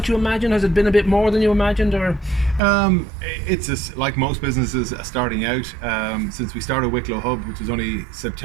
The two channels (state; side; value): drops out; left; at 2.6 s